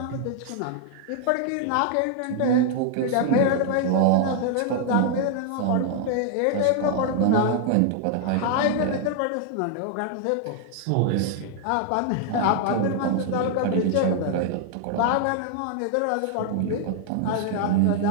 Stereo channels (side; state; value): both; different; correlation 0.00